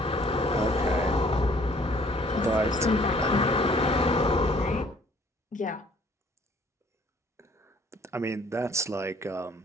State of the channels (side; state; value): both; normal; correlation 0.58